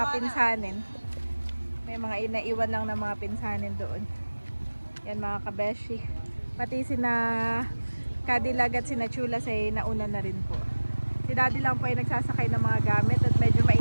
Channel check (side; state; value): both; inverted; correlation -1.00